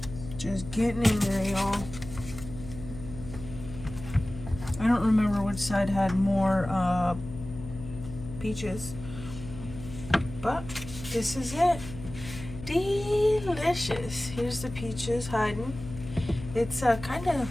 Just getting in there, y'all. I don't remember which side had more peaches, but this is it. Delicious. Here's the peaches hiding. It's kind of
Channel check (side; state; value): left; noise; hum, 12 dB below the sound